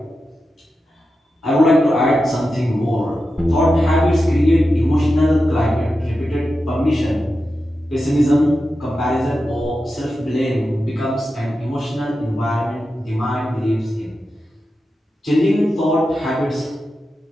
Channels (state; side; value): normal; both; correlation 0.91